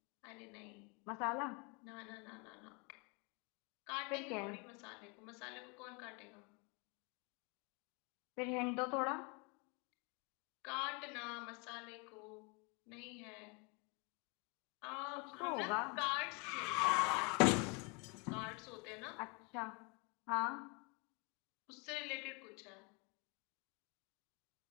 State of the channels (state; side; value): quieter; right; 31.8 dB